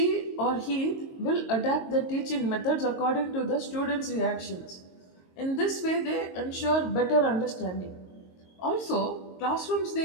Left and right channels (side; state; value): right; late; 22 ms